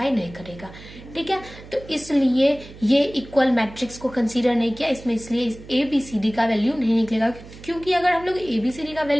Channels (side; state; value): right; noise; hum, 17 dB below the sound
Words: नहीं करेगा। ठीक है, तो इसलिए ये इक्वल मैट्रिक्स को कंसीडर नहीं किया इसमें, इसलिए इस ABCD का वैल्यू नहीं निकलेगा, क्योंकि अगर हम लोग ABCD का